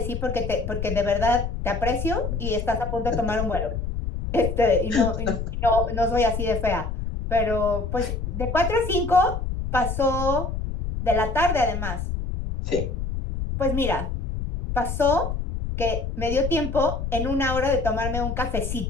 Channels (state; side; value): noise; left; rumble, 4 dB below the sound